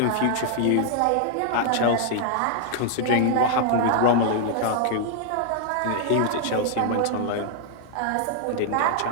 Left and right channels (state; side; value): different; both; correlation -0.01